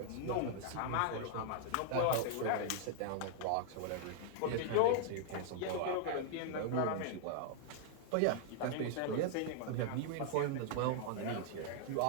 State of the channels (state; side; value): different; both; correlation -0.01